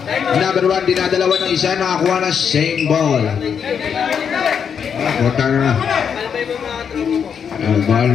Number 1, dinadalawa ng isa. Nakakuha na same ball. Putang na. Ball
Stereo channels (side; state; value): right; quieter; 7.2 dB